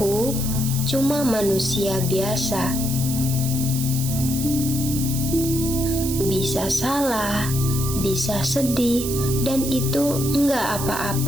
cuma manusia biasa. Bisa salah, bisa sedih, dan itu enggak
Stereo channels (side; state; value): right; noise; hiss, 6 dB below the sound